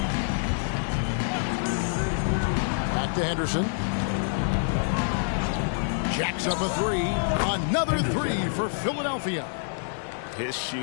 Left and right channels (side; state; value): right; silent; digital silence